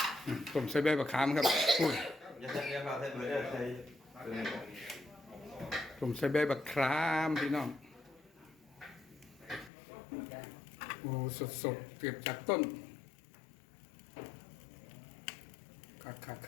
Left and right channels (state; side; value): drops out; right; at 9.7 s